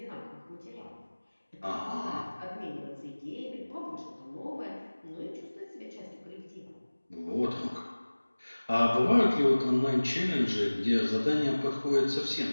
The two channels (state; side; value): inverted; both; correlation -1.00